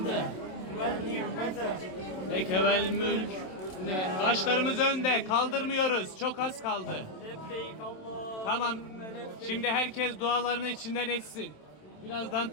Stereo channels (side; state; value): right; late; 27 ms